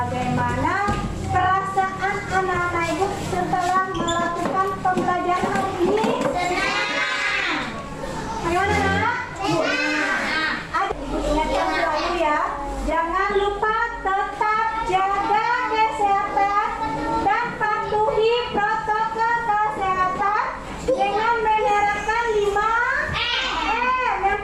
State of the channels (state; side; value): identical; both; correlation 1.00